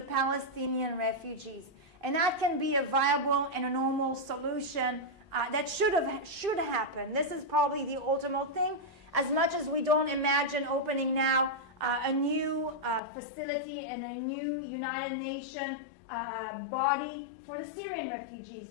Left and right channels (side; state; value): right; drops out; at 13.0 s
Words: Palestinian refugees. And that can be a viable and a normal solution that should happen. This is probably the ultimate thing, as much as we don't imagine opening now a new facility and a new United Nations body for the Syrian